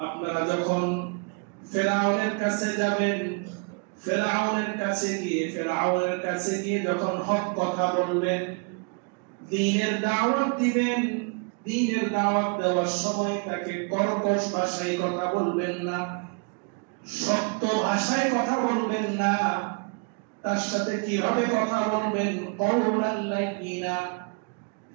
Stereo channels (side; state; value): left; quieter; 35.1 dB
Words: আপনারা যখন ফেরাউনের কাছে যাবেন ফেরাউনের কাছে গিয়ে যখন হক কথা বলবেন দ্বীনের দাওয়াত দিবেন দ্বীনের দাওয়াত দেওয়ার সময় তাকে কর্কশ ভাষায় কথা বলবেন না শক্ত ভাষায় কথা বলবেন না তার সাথে কিভাবে কথা বলবেন কওলান লাইয়িনা